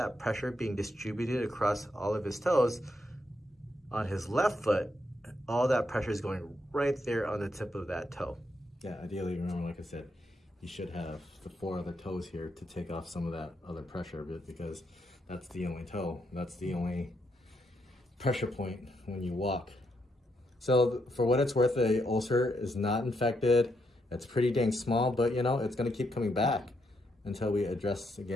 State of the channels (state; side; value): normal; both; correlation 0.79